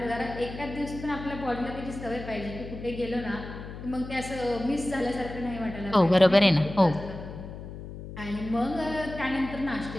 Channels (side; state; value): left; noise; hum, 11 dB below the sound